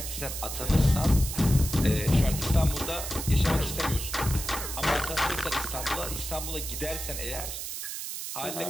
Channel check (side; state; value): right; noise; hiss, 6 dB below the sound